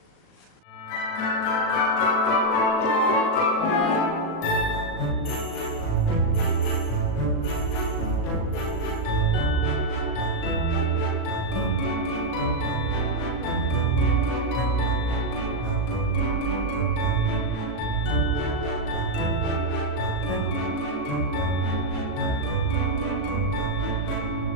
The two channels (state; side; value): late; right; 36 ms